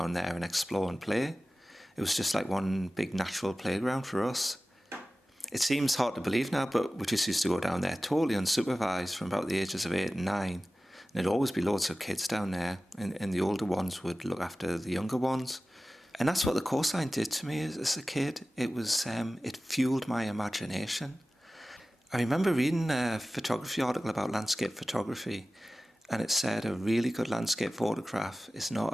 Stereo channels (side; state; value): both; normal; correlation 0.96